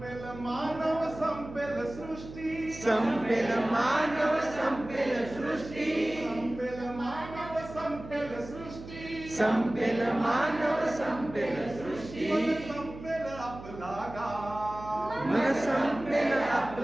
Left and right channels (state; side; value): noise; right; hum, 14 dB below the sound